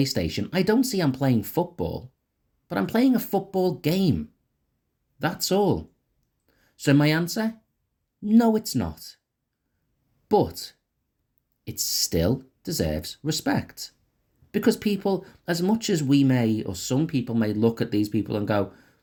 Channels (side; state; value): both; identical; correlation 1.00